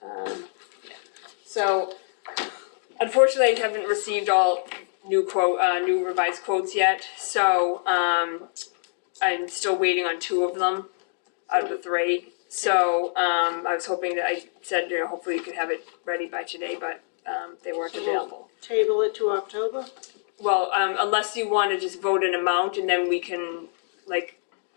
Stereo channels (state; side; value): silent; right; digital silence